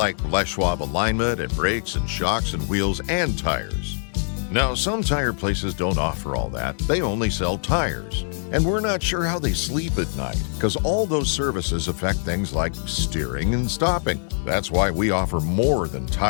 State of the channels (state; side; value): silent; right; 63 dB below the other